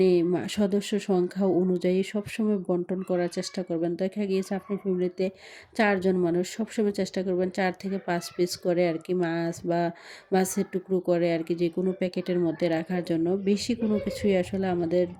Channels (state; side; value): identical; both; correlation 1.00